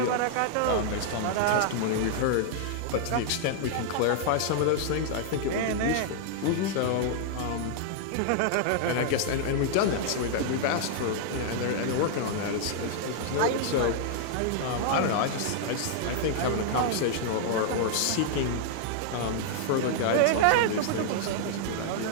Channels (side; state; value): both; different; correlation 0.00